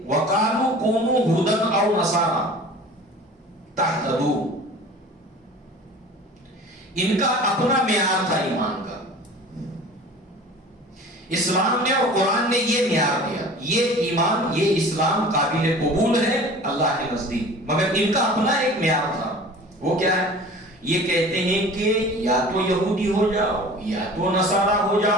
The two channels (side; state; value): both; normal; correlation 0.42